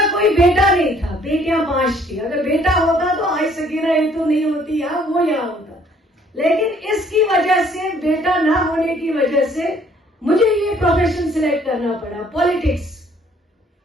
कोई बेटा नहीं था, बेटियां 5 थी। अगर बेटा होता तो आज सकीना इत्तू नहीं होती या वो यहाँ होता। लेकिन इसकी वजह से, बेटा ना होने की वजह से मुझे ये प्रोफेशन सिलेक्ट करना पड़ा, पॉलिटिक्स।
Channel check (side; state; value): both; normal; correlation 0.61